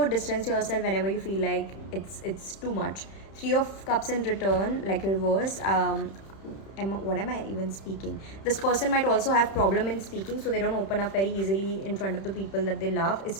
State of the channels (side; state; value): right; late; 31 ms